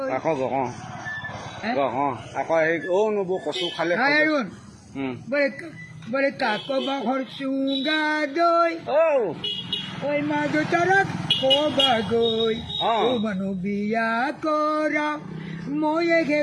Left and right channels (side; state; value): both; identical; correlation 1.00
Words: কচু খালে বলে কাক বাহর চুঙ্গা দই ওই মা তারা কবা গই ও মানু বিয়া করা ময়ে